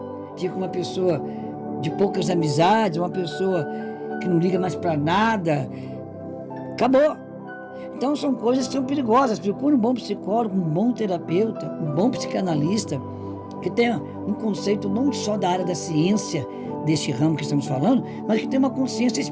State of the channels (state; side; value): identical; both; correlation 1.00